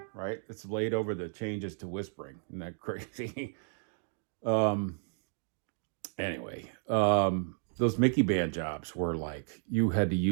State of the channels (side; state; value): left; silent; 56 dB below the other